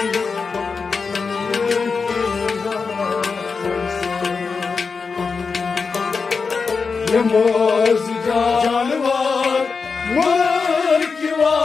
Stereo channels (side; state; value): right; quieter; 5.0 dB